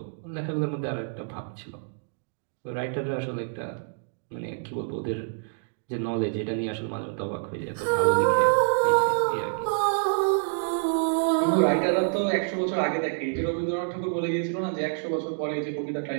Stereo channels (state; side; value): silent; left; digital silence